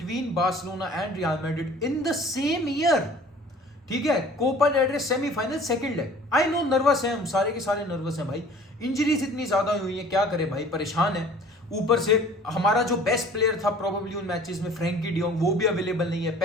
Barcelona and Real Madrid in the same year, ठीक है, Copa del Rey semifinal second leg. I know nervous है, हम सारे के सारे नर्वस हैं भाई, इंजरीज इतनी ज्यादा हुई है, क्या करे भाई, परेशान है। ऊपर से हमारा जो बेस्ट प्लेयर था प्रोबेबली उन मैचेस में फ्रैंकी डियोंग, वो भी अवेलेबल नहीं है,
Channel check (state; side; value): normal; both; correlation 0.48